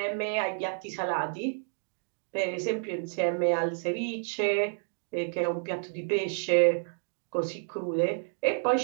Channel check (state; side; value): silent; left; digital silence